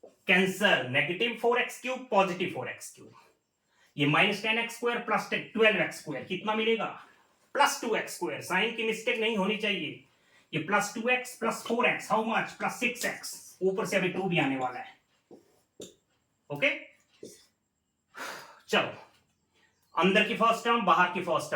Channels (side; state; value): both; identical; correlation 1.00